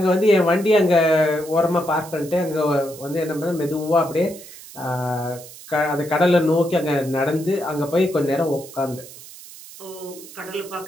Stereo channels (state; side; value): noise; right; hiss, 17 dB below the sound